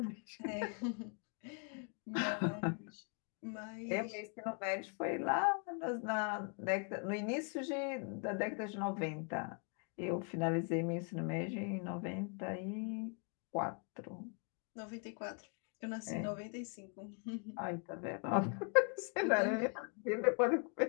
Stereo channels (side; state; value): right; quieter; 39.0 dB